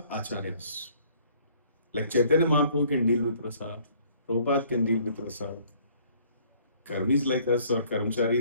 Acharyas. Like Chaitanya Mahaprabhu can deal with rasa. Prabhupada can deal with rasa. Karmis like us or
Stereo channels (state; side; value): inverted; both; correlation -0.58